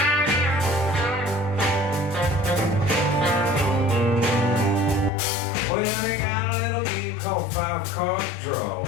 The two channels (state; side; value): drops out; right; at 5.1 s